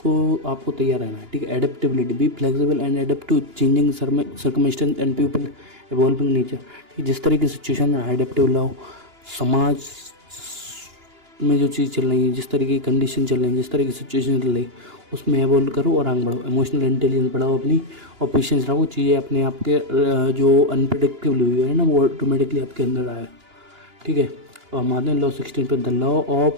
आपको तैयार रहना है। ठीक है। Adaptability, be flexible and adapt to changing circumstance and people evolving nature. ठीक, जिस तरह की सिचुएशन है एडेप्टेबल रहो। समाज में जो चीज़ चल रही है, जिस तरीके की कंडीशन चल रही है, जिस तरह की सिचुएशन चल रही है उसमें एवॉल्व करो और आगे बढ़ो। इमोशनल इंटेलिजेंस बढ़ाओ अपनी, और पेशेंस रखो। चीज़ें अपने आप के जो अनप्रिडिक्टेबल हुई है ना वो ऑटोमेटिकली आपके अंदर आएगा। ठीक है। और हमारे लॉ 16 पे, the law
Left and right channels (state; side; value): late; left; 2.9 ms